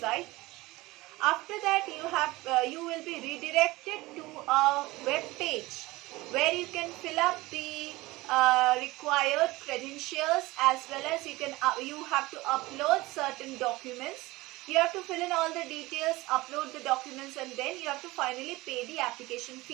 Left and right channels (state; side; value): quieter; left; 20.3 dB